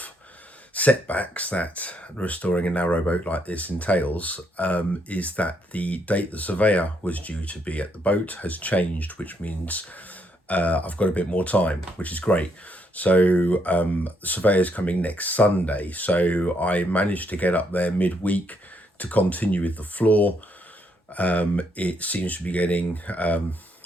setbacks that restoring a narrowboat like this entails is that the date the surveyor was due to be at the boat has changed, which means I've got a bit more time, which is great. So the surveyor's coming next Sunday, so I managed to get up there midweek to continue with the floor. It seems to be getting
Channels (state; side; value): normal; both; correlation 0.74